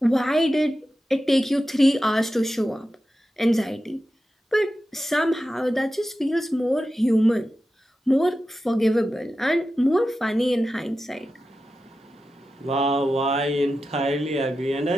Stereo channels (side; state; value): both; normal; correlation 0.92